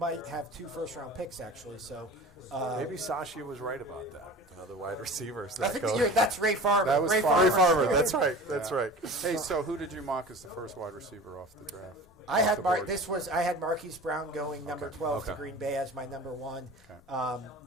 have 2 first-round picks, actually. So maybe Sashi was right about that. The wide receivers. I think that's Ray Farmer. That was Ray Farmer. That's right. That's right. Hey, so who did you mock as the first wide receiver off the draft? I had Marquise Brown going number 12 to Green Bay as my number 1,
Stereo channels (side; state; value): both; normal; correlation 0.37